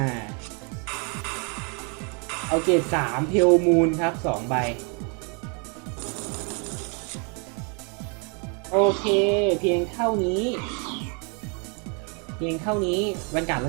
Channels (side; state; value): left; quieter; 36.1 dB